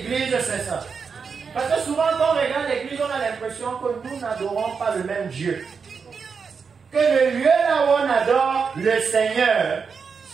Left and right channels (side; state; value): left; quieter; 5.7 dB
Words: sait ça? Parce que souvent quand on regarde l'église, on a l'impression que nous n'adorons pas le même Dieu. Que le lieu là où on adore le Seigneur,